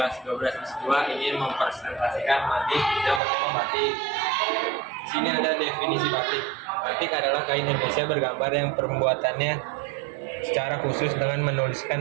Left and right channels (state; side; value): drops out; left; at 3.2 s